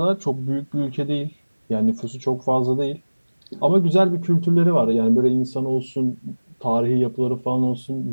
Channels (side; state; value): both; inverted; correlation -1.00